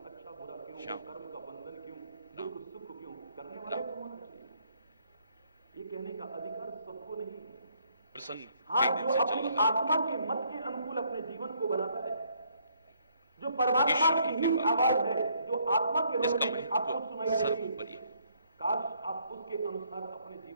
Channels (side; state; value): both; inverted; correlation -0.68